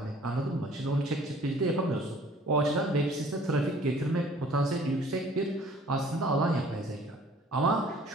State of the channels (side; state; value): both; normal; correlation 0.53